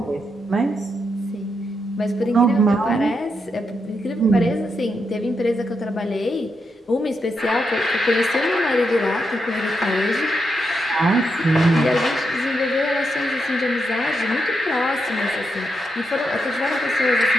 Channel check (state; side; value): normal; both; correlation 0.83